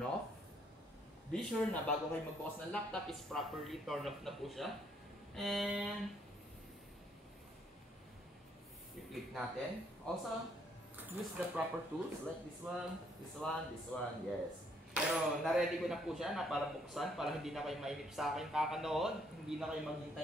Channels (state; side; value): normal; both; correlation 0.68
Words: Be sure na bago kayo magbukas ng laptop is properly turn off na po siya. And i-click natin. Also, use the proper tools like this one, this one, this one. Yes. Pero na-ready ko na po siya na para buksan para hindi na kayo mainip sa akin kakanood. Hindi na kayo